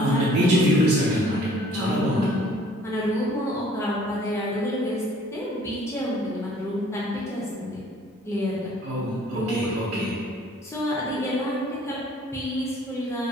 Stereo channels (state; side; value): normal; both; correlation 0.56